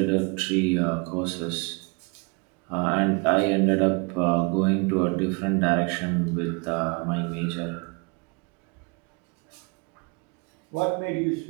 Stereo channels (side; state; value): left; quieter; 31.1 dB